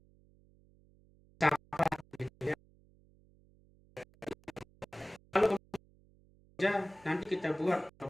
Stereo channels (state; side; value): noise; right; hum, 29 dB below the sound